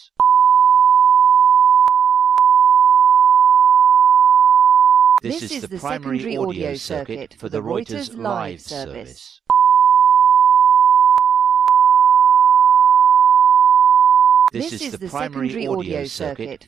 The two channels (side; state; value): left; quieter; 7.5 dB